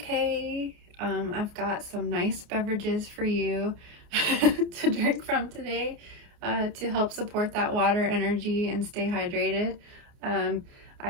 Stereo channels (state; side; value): late; left; 29 ms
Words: I've got some nice beverages for you to drink from today to help support that water energy and stay hydrated.